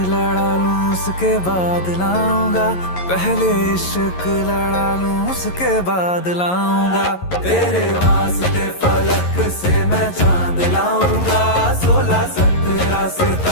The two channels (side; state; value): right; late; 11 ms